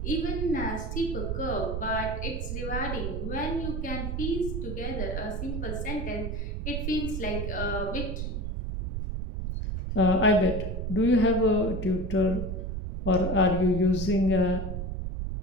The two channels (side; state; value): right; noise; rumble, 3 dB below the sound